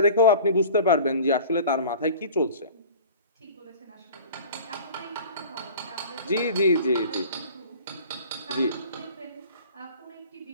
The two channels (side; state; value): both; inverted; correlation -0.42